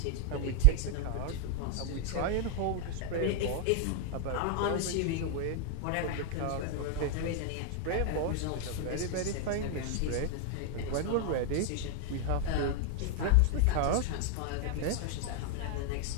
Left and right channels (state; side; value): different; both; correlation 0.00